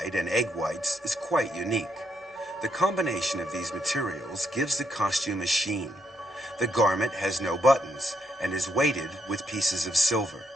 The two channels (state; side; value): normal; both; correlation 0.77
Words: and egg whites, is quite unique. The combination of these materials gives the costume a sheen. The garment has no buttons and is weighted with pieces of silver.